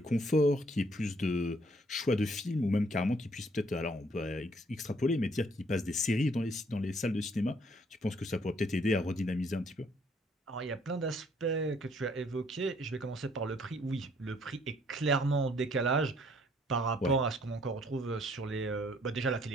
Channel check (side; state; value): both; normal; correlation 0.64